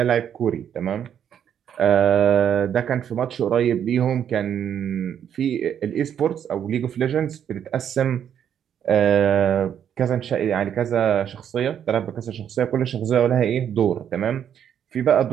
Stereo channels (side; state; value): left; quieter; 9.0 dB